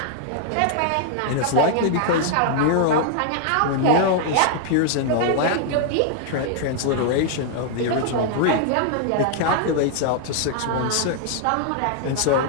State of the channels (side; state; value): both; different; correlation 0.00